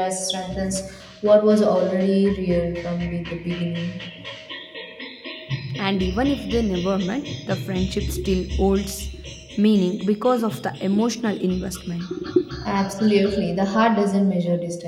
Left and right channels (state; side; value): identical; both; correlation 1.00